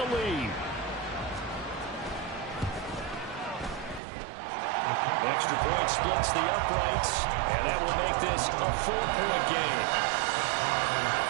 lead. Extra point splits the uprights, and that will make this a 4-point game.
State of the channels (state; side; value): drops out; left; at 4.0 s